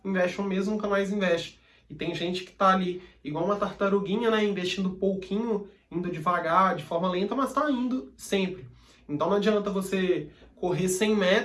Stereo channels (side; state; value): both; identical; correlation 1.00